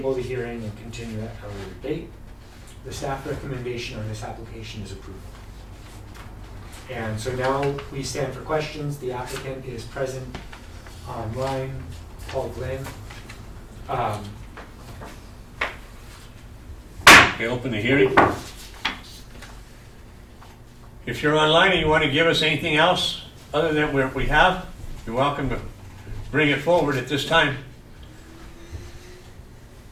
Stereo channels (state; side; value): identical; both; correlation 1.00